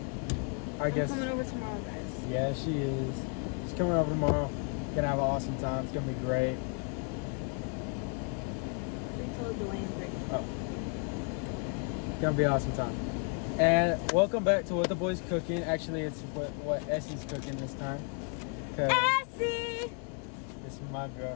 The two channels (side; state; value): right; quieter; 38.7 dB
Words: I guess... I'm coming over tomorrow, guys. Yeah, she is. She's coming over tomorrow, gonna have an awesome time, it's gonna be great. We told Dwayne Oh. Gonna be an awesome time. And welcome back to What the Boys Cooking. Actually, it's what Essie's cooking this time. Essie! This is my